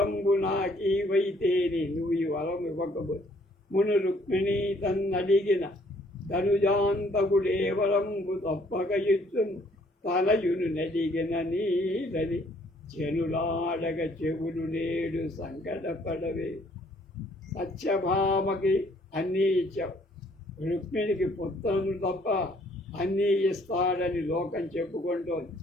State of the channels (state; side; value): normal; both; correlation 0.63